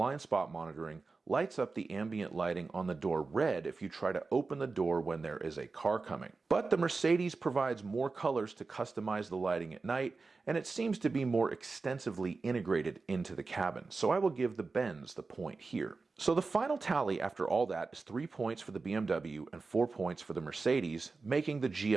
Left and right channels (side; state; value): left; quieter; 4.0 dB